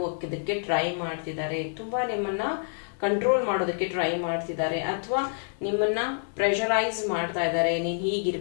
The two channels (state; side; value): silent; right; 57 dB below the other